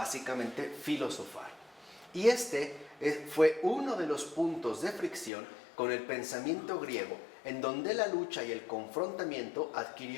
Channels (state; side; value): drops out; right; at 5.3 s